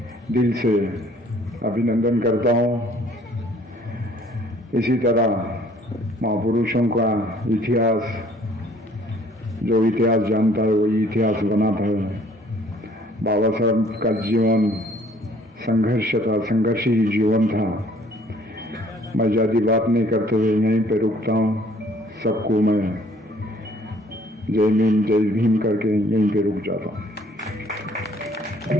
दिल से अभिनंदन करता हूँ। इसी तरह महापुरुषों का इतिहास, जो इतिहास जानता है वही इतिहास बनाता है। बाबा साहब का जीवन संघर्ष था, संघर्षी जीवन था। मैं ज़्यादा बात नहीं करते हुए यहीं पे रुकता हूँ। सबको मैं जय भीम करके यहीं पे रुक जाता हूँ।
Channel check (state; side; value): normal; both; correlation 0.58